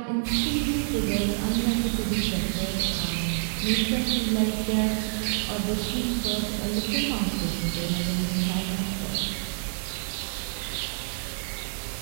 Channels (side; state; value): left; silent; 60 dB below the other